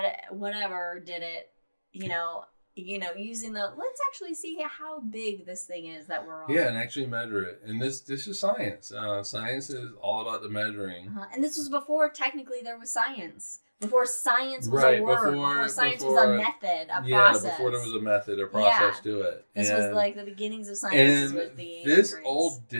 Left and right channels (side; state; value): both; inverted; correlation -1.00